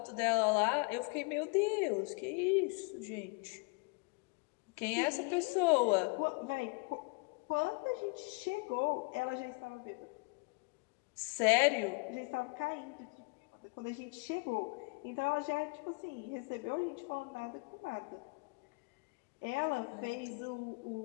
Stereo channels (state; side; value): quieter; right; 31.7 dB